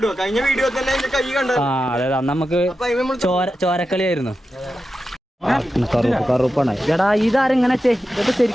ആ അതെ അന്ന് നമുക്ക് ചോരക്കളിയായിരുന്നു. കറുപ്പാണ്. എടാ ഇതാരെങ്ങനെ ഇതൊക്കെ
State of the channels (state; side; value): normal; both; correlation 0.91